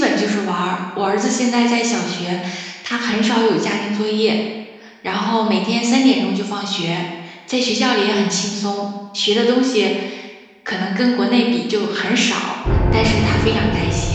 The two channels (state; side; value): identical; both; correlation 1.00